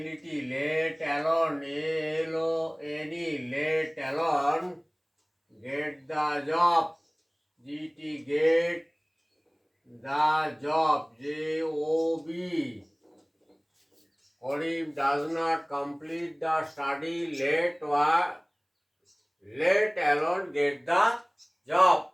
let alone ALONE let alone get the job GT get the job JOB। Karim does not complete the study let alone get the job.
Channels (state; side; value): identical; both; correlation 1.00